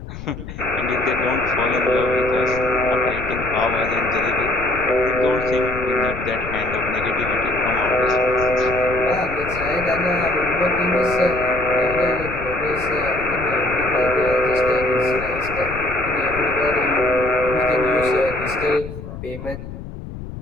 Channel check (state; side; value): noise; left; rumble, 11 dB below the sound